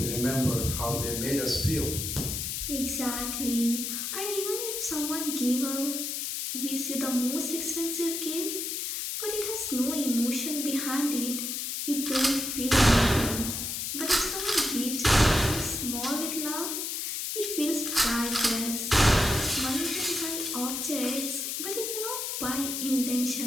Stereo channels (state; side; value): noise; left; hiss, 3 dB below the sound